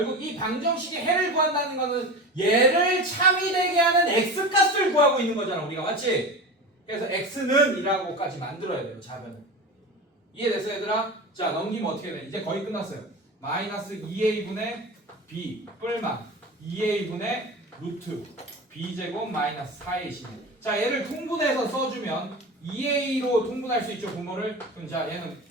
이 방정식의 해를 구한다는 거는 얘를 참이되게 하는 x값을 구하고 있는 거잖아 우리가 맞지? 그래서 x는 이라고까지 만들어야 돼요 좌변을. 이해됐어 얘들아? 자 넘기면 어떻게 돼? 이제 거의 끝났어요. 마이너스 2a분의 b 뿔마 2a분의 루트 b제곱 마이너스 4ac. 자 얘를 통분해서 써주면 2a로 통분할 수 있죠 분모를. 그럼 자 얘는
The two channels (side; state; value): both; normal; correlation 0.29